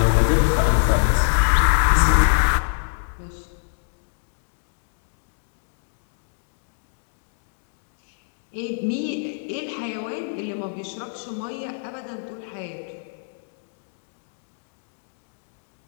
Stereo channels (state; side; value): silent; right; digital silence